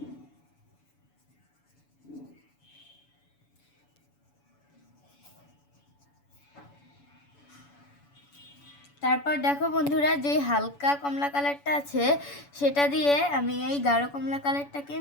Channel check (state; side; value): late; right; 7.0 ms